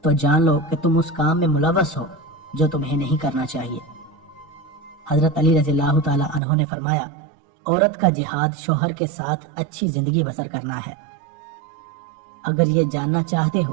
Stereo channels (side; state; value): left; drops out; at 6.4 s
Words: تو جان لو کہ تم اس کام میں ملوث ہو جو تمہیں نہیں کرنا چاہیے۔ حضرت علی رضی اللہ تعالی عنہ نے فرمایا، عورت کا جہاد شوہر کے ساتھ اچھی زندگی بسر کرنا ہے۔ اگر یہ جاننا چاہتے